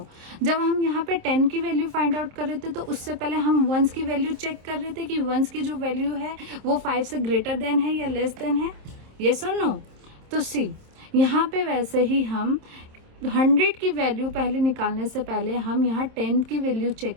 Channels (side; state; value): left; late; 27 ms